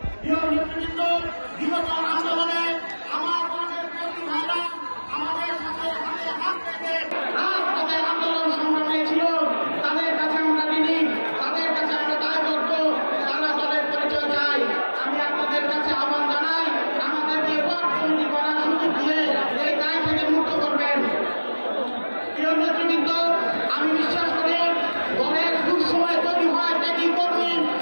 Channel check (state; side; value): inverted; both; correlation -1.00